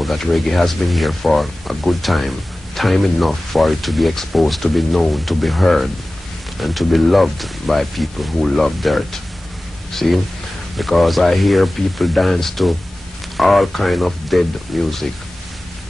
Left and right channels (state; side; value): normal; both; correlation 0.97